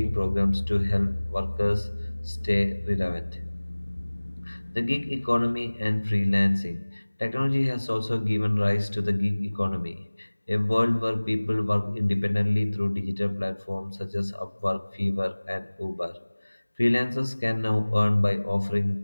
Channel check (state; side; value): inverted; both; correlation -1.00